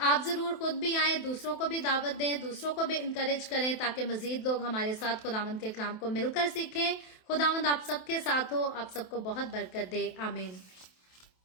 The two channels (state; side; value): late; right; 27 ms